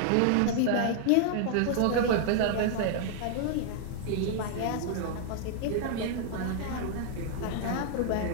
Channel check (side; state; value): both; different; correlation 0.00